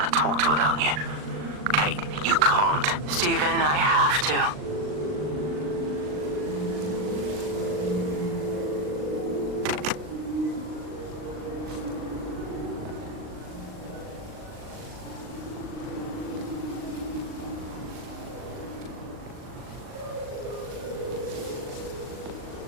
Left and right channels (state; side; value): late; left; 39 ms